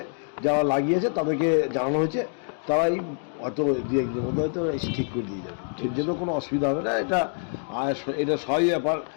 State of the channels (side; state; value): right; silent; digital silence